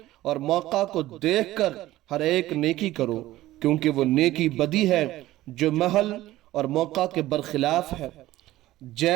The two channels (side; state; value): left; quieter; 15.9 dB